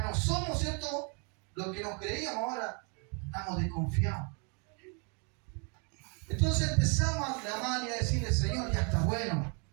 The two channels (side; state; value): left; quieter; 36.2 dB